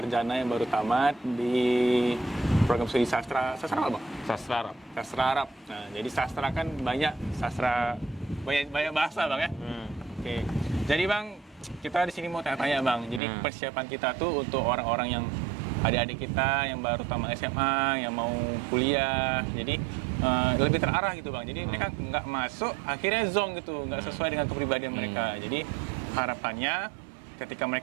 yang baru tamat di program studi sastra. Sastra apa, Bang? Sastra Arab. Sastra Arab. Nah, jadi sastra kan banyak sastra, banyak bahasa, Bang ya. Oke. Jadi, Bang, kita di sini mau tanya-tanya, Bang. Jadi persiapan kita tuh untuk orang-orang yang adik-adik kita yang baru tamat SMA, yang mau kuliah. Jadi lebih terarah gitu, Bang. Jadi mereka nggak masuk, akhirnya zonk gitu, nggak sesuai dengan kepribadian mereka. Jadi harapannya ketika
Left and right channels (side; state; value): left; drops out; at 13.2 s